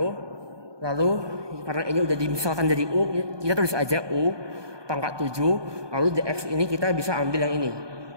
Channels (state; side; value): late; left; 1.2 ms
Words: Lalu karena ini udah dimisalkan jadi u, kita tulis aja u pangkat 7. Lalu dx ini kita bisa ambil yang ini,